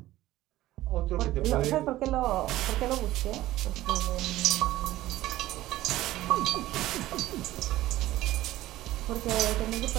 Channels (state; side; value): quieter; left; 15.7 dB